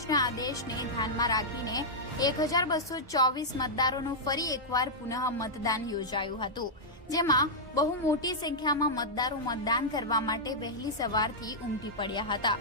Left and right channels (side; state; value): both; normal; correlation -0.08